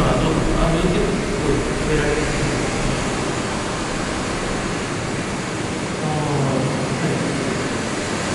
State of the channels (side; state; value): both; identical; correlation 1.00